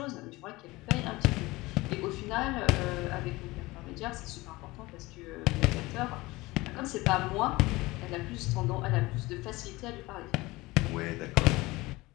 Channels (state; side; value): quieter; right; 20.9 dB